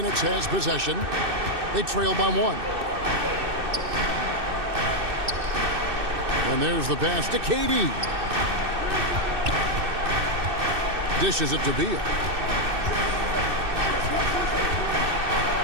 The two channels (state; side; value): late; left; 2.6 ms